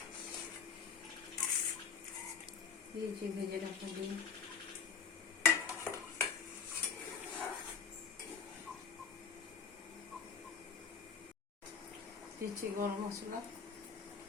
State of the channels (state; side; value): quieter; right; 6.1 dB